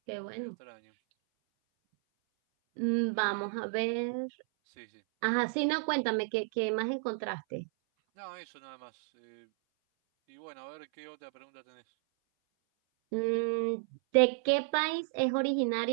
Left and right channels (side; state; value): left; silent; 56 dB below the other